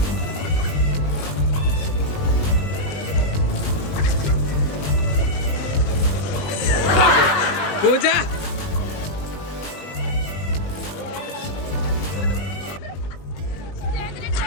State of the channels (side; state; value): right; late; 20 ms